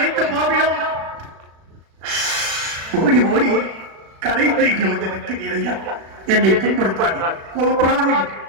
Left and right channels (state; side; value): late; left; 36 ms